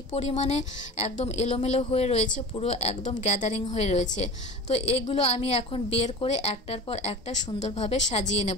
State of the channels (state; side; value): normal; both; correlation 0.34